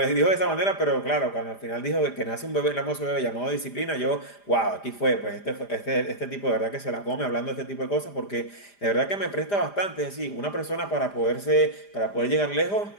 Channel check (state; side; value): late; right; 4.9 ms